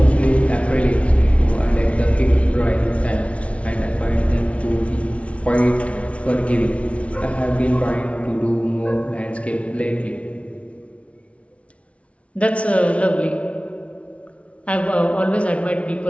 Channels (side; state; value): right; late; 0.063 ms